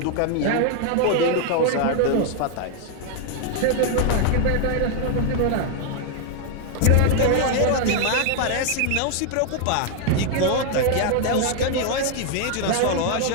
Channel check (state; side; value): different; both; correlation 0.00